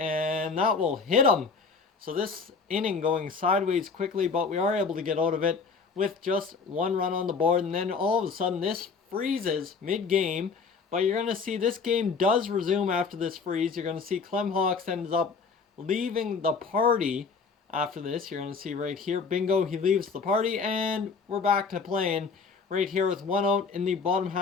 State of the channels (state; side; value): quieter; right; 5.1 dB